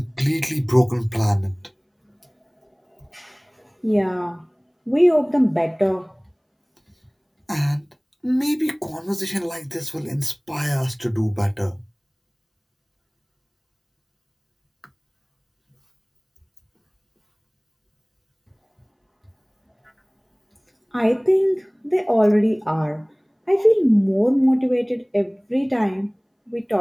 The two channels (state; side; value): identical; both; correlation 1.00